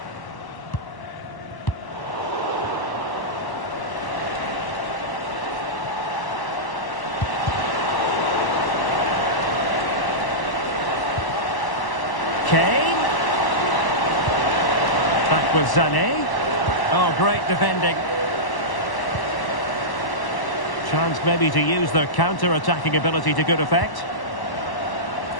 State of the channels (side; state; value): right; late; 1.1 ms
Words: Kane. Back with Sané. Oh, great defending. Chance maybe to use their counter-attacking ability to good effect.